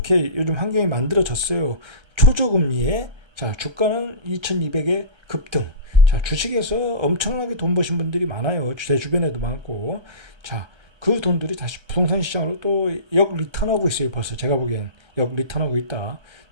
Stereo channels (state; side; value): late; left; 1.3 ms